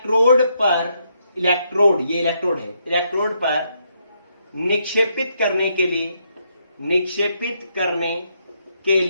पर, ये इलेक्ट्रोड है, इलेक्ट्रोड पर निक्षेपित करने के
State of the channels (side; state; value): both; inverted; correlation -0.76